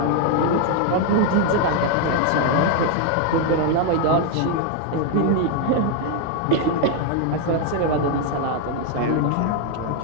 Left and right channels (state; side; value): different; both; correlation 0.01